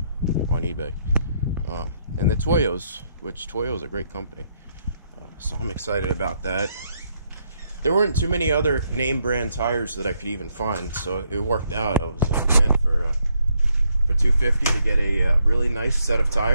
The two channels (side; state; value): both; inverted; correlation -0.75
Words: on eBay. And the Toyos, which Toyo's a great company. So I'm excited about that. There weren't too many other name brand tires that I could even find, so it worked out. I was like, man, for $250 to get a really nice set of